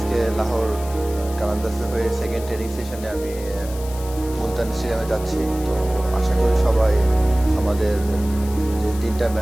লাহোর কালান্দাসে হয়ে সেকেন্ড ট্রেনিং সেশনে আমি মুলতান স্টেডিয়ামে যাচ্ছি। তো আশা করি সবাই আমাদের যে দুইটা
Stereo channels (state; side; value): noise; left; hiss, 16 dB below the sound